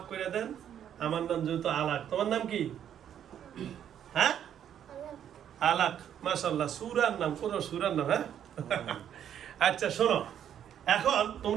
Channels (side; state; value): left; quieter; 9.6 dB